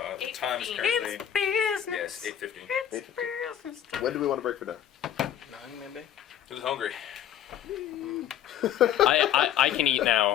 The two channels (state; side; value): quieter; right; 10.5 dB